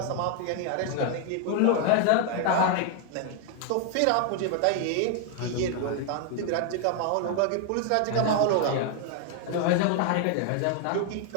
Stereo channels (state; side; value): different; both; correlation 0.00